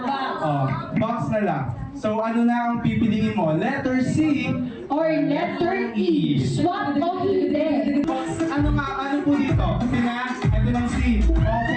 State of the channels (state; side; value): identical; both; correlation 1.00